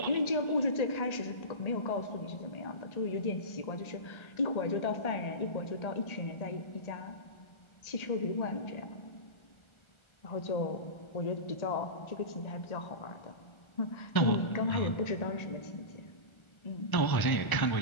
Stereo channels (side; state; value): right; late; 1.4 ms